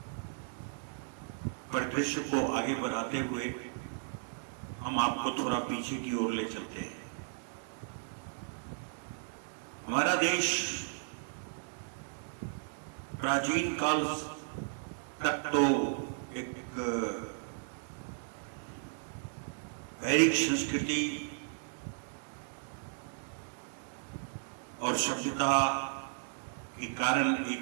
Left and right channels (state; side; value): silent; left; digital silence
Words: परिदृश्य को आगे बढ़ाते हुए हम आपको थोड़ा पीछे की ओर ले चलते हैं। हमारा देश प्राचीन काल तक तो एक वैदिक संस्कृति और सभ्यता के कारण